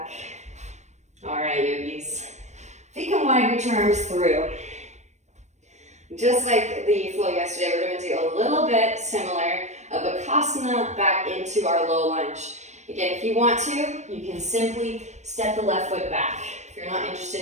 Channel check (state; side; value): late; left; 0.34 ms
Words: All right, yogis. Feet can wide, reach your arms through. Just like the flow yesterday, we're going to do a little bit similar of Bakasana back into our low lunge. Again, if you want to, you can simply step the left foot back. If you're not